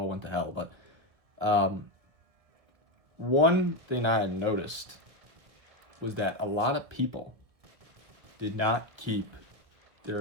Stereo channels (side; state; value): left; late; 1.6 ms